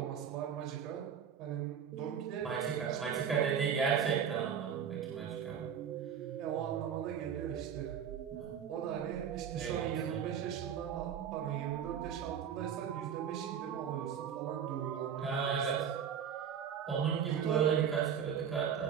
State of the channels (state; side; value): quieter; left; 8.0 dB